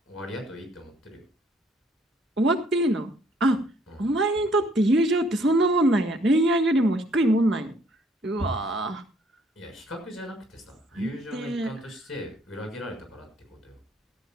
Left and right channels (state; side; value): normal; both; correlation 0.64